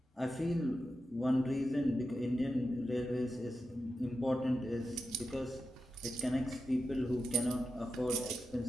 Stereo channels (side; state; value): both; normal; correlation 0.89